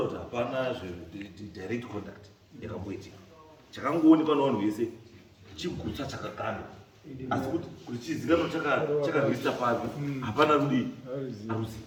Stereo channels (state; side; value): identical; both; correlation 1.00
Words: kuti hapana direct contact yakamboitika. Chakangoonekwa navanhu vese chigutsa chakakanda asi kuti chizikanwa chakarwisa papi hapana rudi haruzi